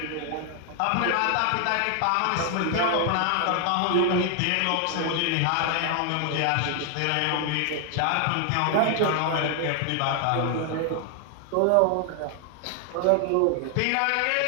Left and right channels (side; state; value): both; different; correlation 0.00